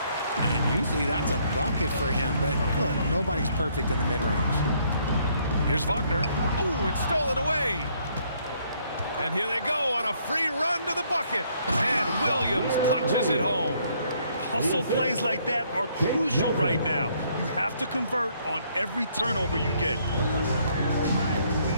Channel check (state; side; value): inverted; both; correlation -0.67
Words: And usually that's a bucket for him, but look, nobody's perfect in the mid-range. Here's Wagner. Oh, it's stolen away. And here they go on a free run to the bucket. And Williams punches it home. Hustle plays like that are crucial right now. You have to convert on every turnover you get.